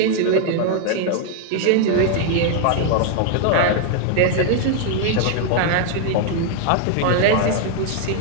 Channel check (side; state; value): both; different; correlation 0.00